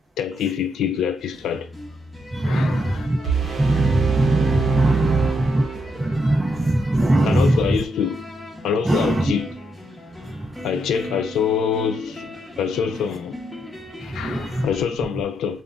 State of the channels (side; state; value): both; normal; correlation 0.79